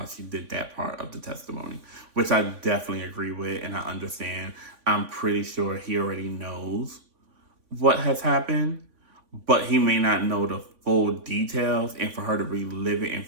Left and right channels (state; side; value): late; left; 3.5 ms